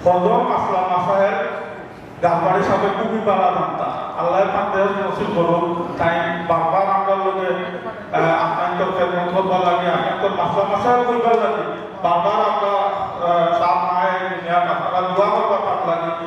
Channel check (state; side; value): identical; both; correlation 1.00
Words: হজম আসলাম মাসাহের গাছবাড়ির সাপে খুবই বাড়া জানতা আল্লাহ পান্ডের নসিব করুন তাই বারবার আমরা লোকে আপনার খেদমত করবার লাগে আপনার মাসলা মাসাহের করবার লাগে বারবার আমরা সাপ মায়ের দুনিয়া আপনারা দোয়া করবার লাগে